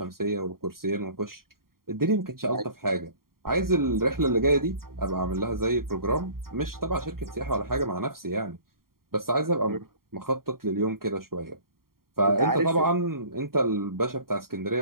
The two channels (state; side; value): late; left; 0.93 ms